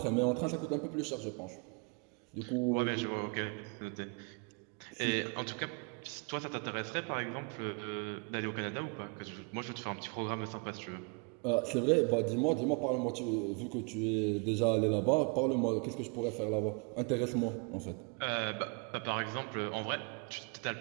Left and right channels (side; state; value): left; quieter; 34.2 dB